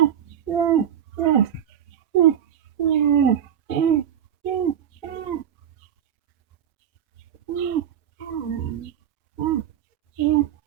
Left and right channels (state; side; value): quieter; left; 9.7 dB